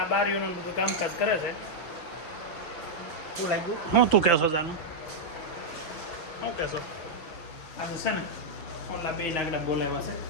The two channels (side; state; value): right; late; 6.4 ms